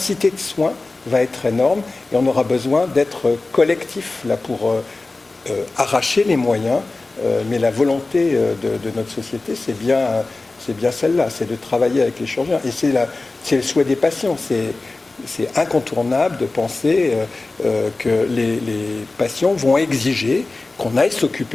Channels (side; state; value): right; quieter; 3.3 dB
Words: de soins va être énorme et on aura besoin d'être collectif là, pour arracher les moyens. Mais la volonté de notre société, c'est bien celle-là, c'est de travailler avec les chirurgiens. Et c'est le souhait des patients. C'est incontournable de penser que les patients vont exiger qu'on aille